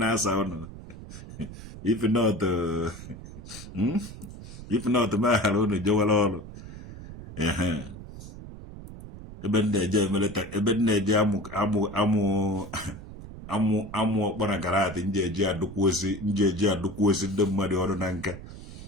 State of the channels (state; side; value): noise; right; rumble, 13 dB below the sound